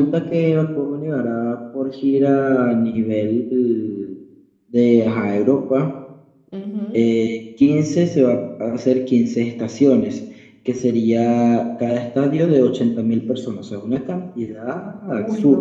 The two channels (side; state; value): both; identical; correlation 1.00